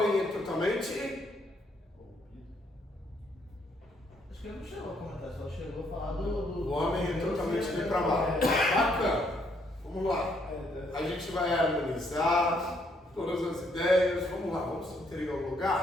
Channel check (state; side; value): normal; both; correlation 0.71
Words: é totalmente. Acho que ele não chegou a comentar, só chegou a falar do. O homem é totalmente depravado. Bacana. Vamos lá. A gente vai harmonizar todas as ideias. Vamos lá, vamos